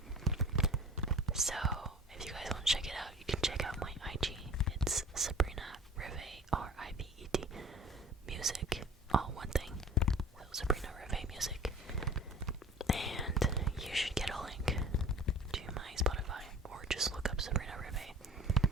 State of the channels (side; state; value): both; normal; correlation 0.43